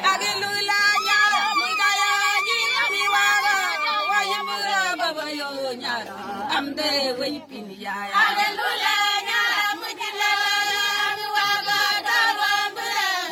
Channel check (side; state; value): both; identical; correlation 1.00